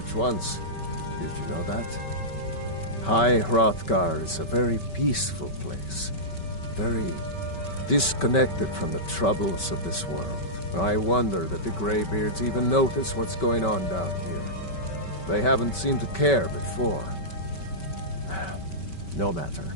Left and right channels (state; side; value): late; right; 5.2 ms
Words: once. Did you know that? High Hrothgar is a very peaceful place. Very disconnected from the troubles of this world. I wonder that the Greybeards even notice what's going on down here. They haven't seemed to care before. No matter.